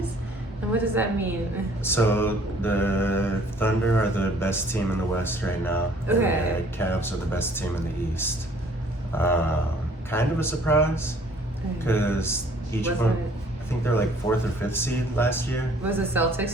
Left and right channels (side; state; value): both; normal; correlation 0.57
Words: And what does that mean? So the Thunder are the best team in the West right now. Okay. And the Cavs are the best team in the East. Kind of a surprise because each Wasn't one, it- I think they're like 4th or 5th seed last year. Was the